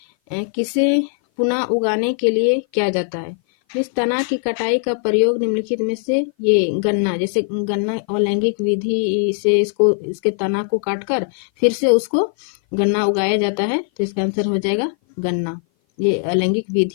किसे पुनः उगाने के लिए किया जाता है। इस तना की कटाई का प्रयोग निम्नलिखित में से ये गन्ना, जैसे गन्ना अलैंगिक विधि से इसके तना को काटकर फिर से उसको गन्ना उगाया जाता है, तो इसका आंसर हो जाएगा गन्ना। ये अलैंगिक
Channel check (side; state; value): right; silent; 57 dB below the other